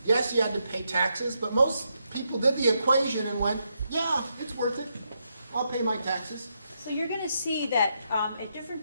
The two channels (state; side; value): inverted; both; correlation -0.80